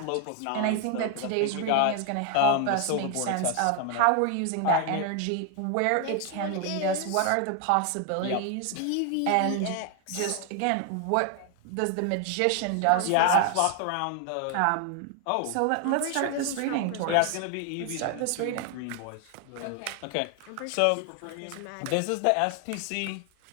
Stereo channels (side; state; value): both; different; correlation 0.00